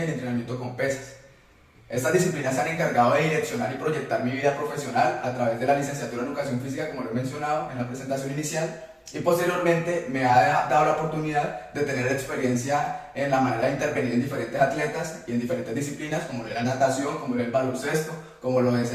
y el entrenamiento con pesas. Estas disciplinas se han encargado de direccionar y proyectar mi vida profesional a través de la licenciatura en Educación Física, como lo he mencionado en la presentación inicial, y posteriormente me ha dado la oportunidad de tener experiencia en la manera de intervenir en diferentes atletas y en diferentes disciplinas, como lo es la natación, como lo es el baloncesto, como lo es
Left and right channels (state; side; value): identical; both; correlation 1.00